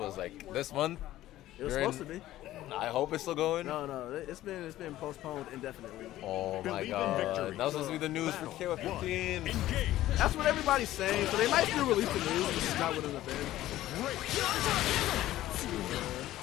like this month. It was supposed to be. I hope it's still going. No, it's been postponed indefinitely. Oh my god, that was supposed to be the news for KOF 15. That's what everybody's saying, so they might still release the news, but it's not within the bed.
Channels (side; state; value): right; quieter; 14.6 dB